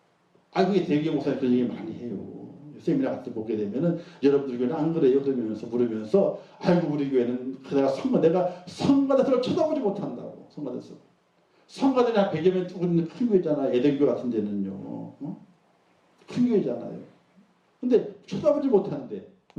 그게 대개 목사님 그런 얘기 많이 해요. 세미나 같은 거 보게 되면은 여러분들 교회는 안 그래요? 그러면서 물으면서 아이고 우리 교회는 내가 성가대성을 쳐다보지 못한다고. 성가대성. 성가대는 한 100여 명 두고 있는 큰 교회잖아. 예대교 같은 데는요. 큰 교회잖아요. 근데 쳐다보지 못하는데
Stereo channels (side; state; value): both; identical; correlation 1.00